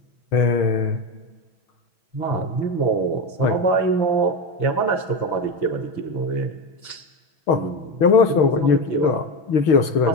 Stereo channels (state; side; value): late; right; 6.4 ms